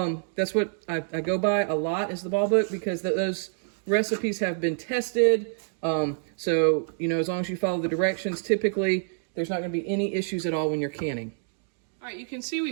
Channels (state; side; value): silent; left; digital silence